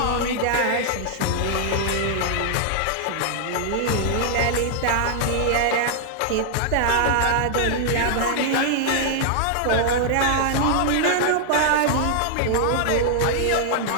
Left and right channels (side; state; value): both; different; correlation -0.01